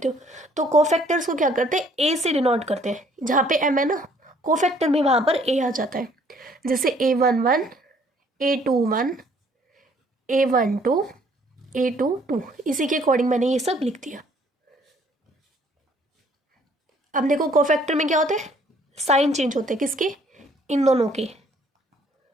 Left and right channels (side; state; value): both; normal; correlation 0.61